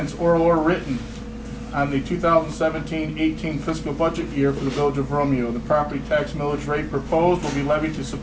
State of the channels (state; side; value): identical; both; correlation 1.00